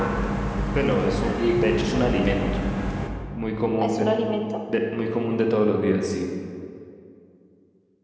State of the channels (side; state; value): both; identical; correlation 1.00